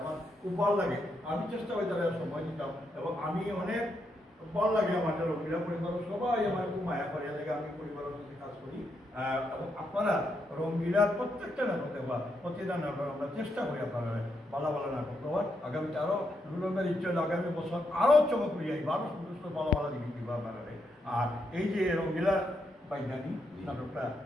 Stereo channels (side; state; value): both; normal; correlation 0.80